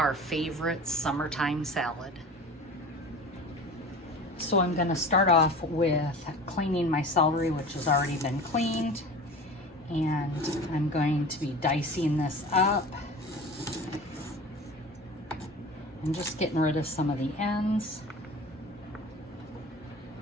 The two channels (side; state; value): both; normal; correlation 0.36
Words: favorite summertime salad. So I'm going to start off with cleaning my celery, which has already been cleaned, and I'm going to be dicing this up and just getting rid of some of the ends.